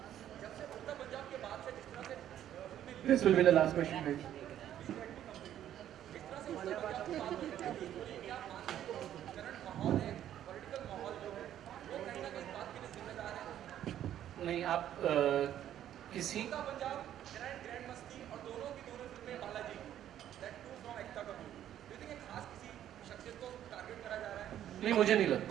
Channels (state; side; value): quieter; left; 11.2 dB